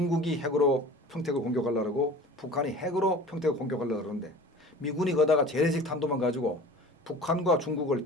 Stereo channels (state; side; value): normal; both; correlation 0.41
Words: 핵으로 평택을 공격하려고 북한이 핵으로 평택을 공격하려고 그러는데 미군이 거다가 재래식 탄두만 가지고 북한과 중국을